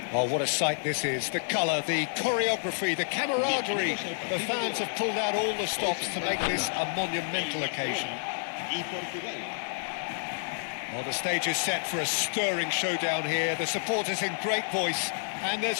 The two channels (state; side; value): silent; right; digital silence